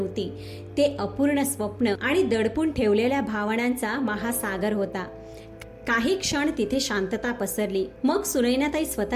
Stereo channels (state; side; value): identical; both; correlation 1.00